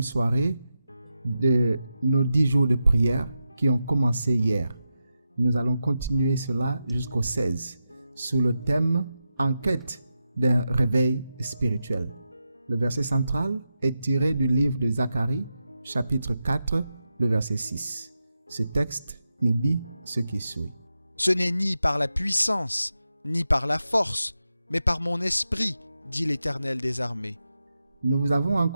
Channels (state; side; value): inverted; both; correlation -0.89